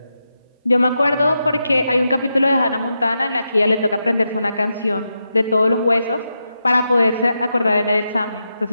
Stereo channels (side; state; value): both; inverted; correlation -0.86